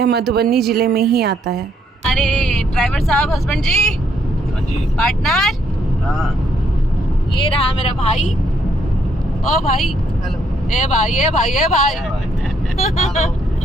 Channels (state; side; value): normal; both; correlation 0.72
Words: मधुबनी ज़िले में ही आता है। अरे ड्राइवर साहब, हस्बैंड जी, हाँ जी, पार्टनर, हाँ, ये रहा मेरा भाई। ओ भाई, हेलो, ए भाई, ए भाई, ए भाई।